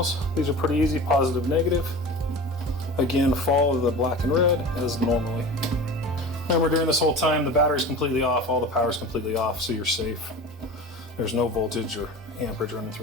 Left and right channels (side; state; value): both; normal; correlation 0.34